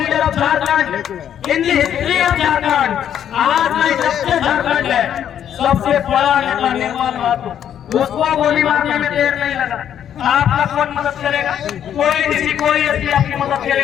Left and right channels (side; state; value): right; quieter; 9.6 dB